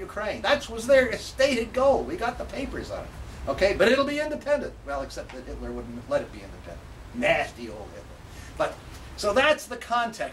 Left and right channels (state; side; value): identical; both; correlation 1.00